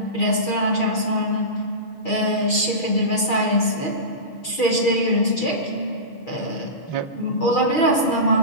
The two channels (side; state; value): right; late; 6.3 ms